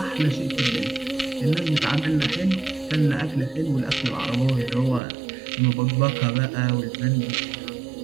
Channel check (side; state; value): left; drops out; at 5.0 s